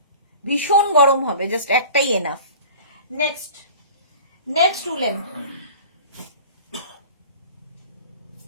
ভীষণ গরম হবে, জাস্ট একটাই এনাফ। নেক্সট, নেক্সট উলেন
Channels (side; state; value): both; inverted; correlation -0.41